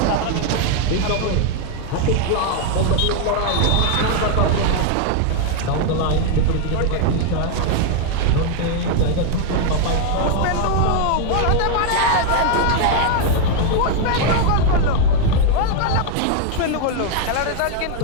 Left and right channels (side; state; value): both; different; correlation 0.00